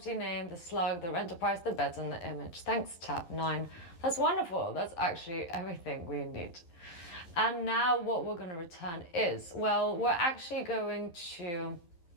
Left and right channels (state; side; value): late; right; 11 ms